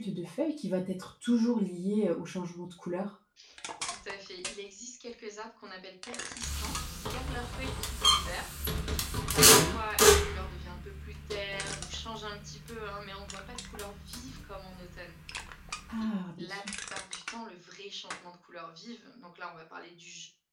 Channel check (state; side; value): identical; both; correlation 1.00